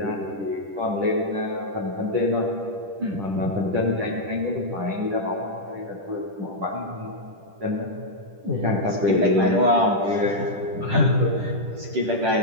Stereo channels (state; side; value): late; left; 10 ms